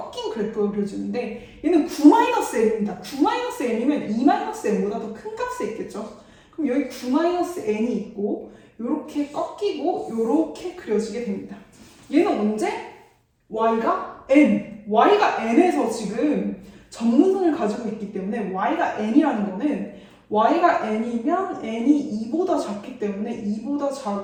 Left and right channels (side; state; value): both; identical; correlation 1.00